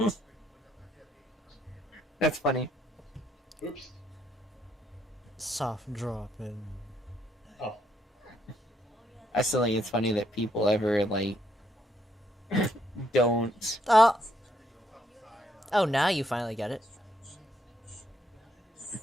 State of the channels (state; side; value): normal; both; correlation 0.73